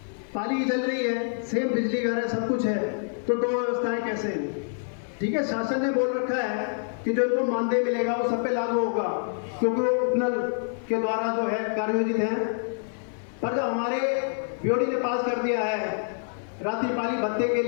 पाली चल रही है, सेम बिजली घर है, सब कुछ है, तो दो व्यवस्थाएं कैसे हैं? ठीक है, शासन ने बोल रखा है कि जो इनको मानदेय मिलेगा वो सब पे लागू होगा, क्योंकि वो उपनल के द्वारा जो है कार्योजित है। पर जब हमारे बीओडी ने पास कर दिया है रात्रिपाली भत्ते के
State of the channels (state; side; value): silent; right; 60 dB below the other